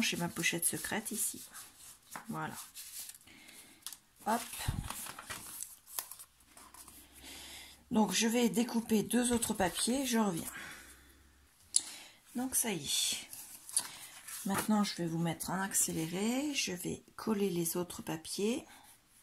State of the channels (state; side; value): identical; both; correlation 1.00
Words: j'ai ma pochette secrète ici. Voilà. Hop. Donc, je vais découper deux autres papiers. Je reviens. Donc, ça y est. Maintenant, je vais vous mettre en accéléré. Je vais coller les autres papiers.